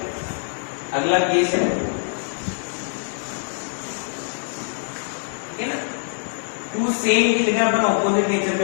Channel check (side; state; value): right; silent; digital silence